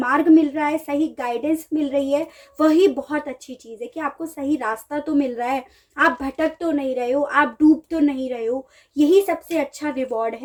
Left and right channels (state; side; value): identical; both; correlation 1.00